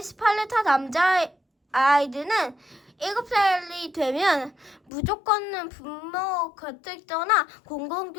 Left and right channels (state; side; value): drops out; right; at 4.9 s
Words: 스파르타 남자아이들은 7살이 되면 무조건 부모 곁을 떠나